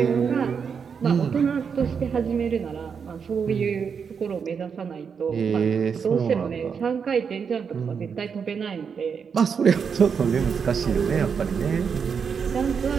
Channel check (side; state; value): left; quieter; 6.4 dB